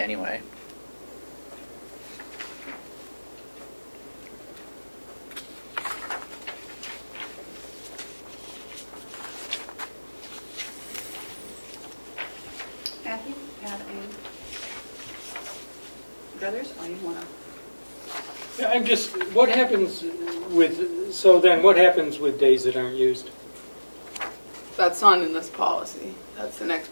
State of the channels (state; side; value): inverted; both; correlation -1.00